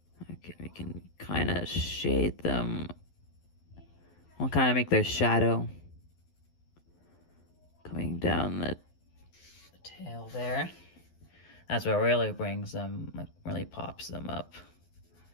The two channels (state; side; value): late; right; 12 ms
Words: Okay, we can kind of shade them. We'll kind of make their shadow coming down the tail there. That's what really brings them, like, really pops them up.